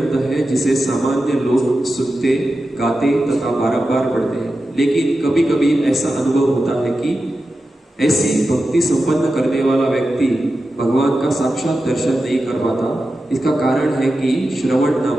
है जिसे सामान्य लोग सुनते, गाते तथा बारंबार पढ़ते हैं, लेकिन कभी कभी ऐसा अनुभव होता है कि ऐसी भक्ति संपन्न करने वाला व्यक्ति भगवान का साक्षात दर्शन नहीं कर पाता। इसका कारण है कि श्रवण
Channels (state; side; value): normal; both; correlation 0.92